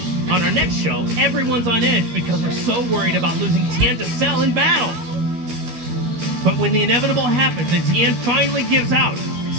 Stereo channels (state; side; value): late; left; 12 ms